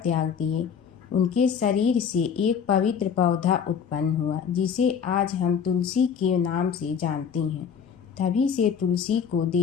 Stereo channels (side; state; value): right; quieter; 7.3 dB